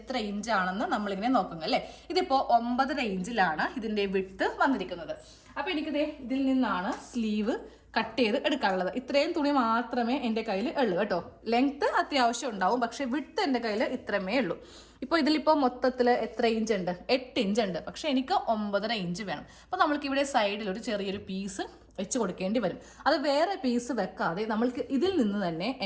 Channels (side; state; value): both; identical; correlation 1.00